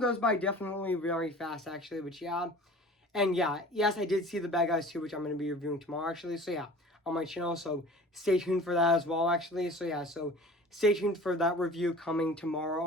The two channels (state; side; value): normal; both; correlation 0.42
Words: by definitely very fast actually. Which yeah, and yeah, yes, I did see The Bad Guys 2, which I'm going to be reviewing tomorrow, actually. So yeah, on my channel. So stay tuned for that as well, actually. So yeah, so stay tuned for that review coming tomorrow